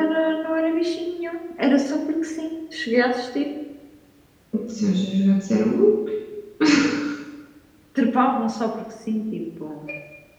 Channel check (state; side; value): identical; both; correlation 1.00